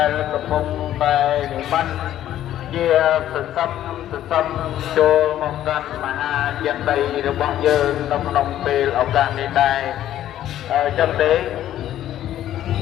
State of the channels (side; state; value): right; quieter; 12.2 dB